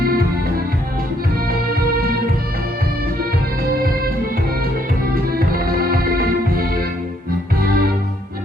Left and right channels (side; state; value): both; normal; correlation 0.69